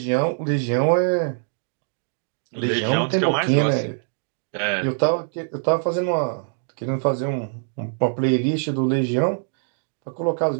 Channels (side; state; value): left; silent; digital silence